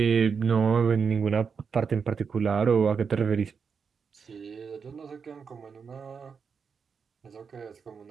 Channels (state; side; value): quieter; left; 6.0 dB